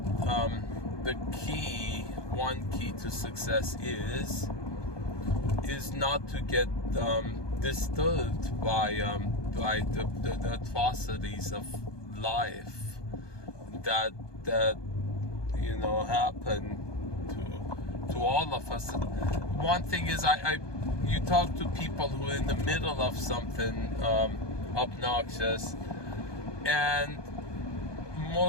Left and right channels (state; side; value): late; right; 1.2 ms